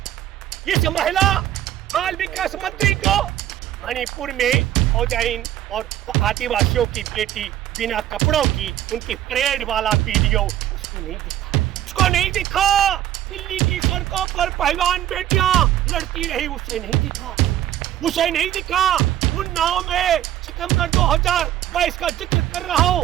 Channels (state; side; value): quieter; left; 12.2 dB